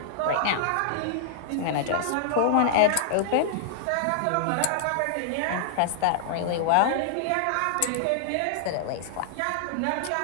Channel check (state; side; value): different; both; correlation -0.01